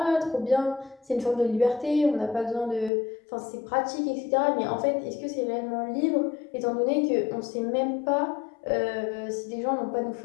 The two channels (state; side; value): drops out; right; at 2.9 s